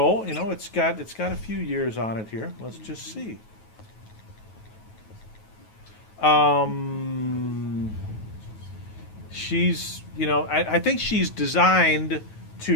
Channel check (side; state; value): right; late; 9.3 ms